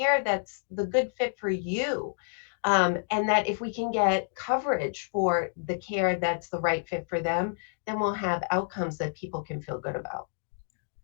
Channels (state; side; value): silent; right; digital silence